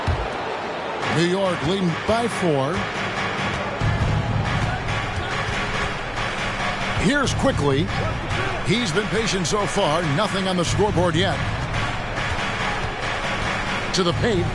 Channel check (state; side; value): identical; both; correlation 1.00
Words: New York leading by 4. Here's quickly. He's been patient so far. Nothing on the scoreboard yet. To the paint.